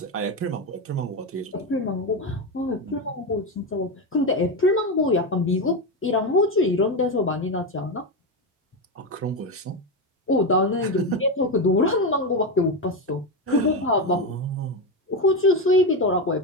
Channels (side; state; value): both; normal; correlation 0.13